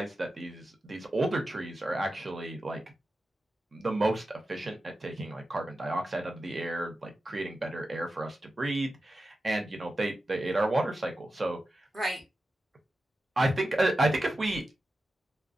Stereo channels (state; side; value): normal; both; correlation 0.92